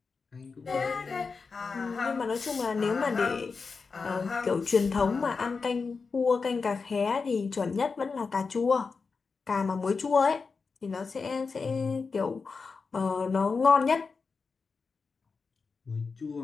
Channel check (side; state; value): right; quieter; 4.8 dB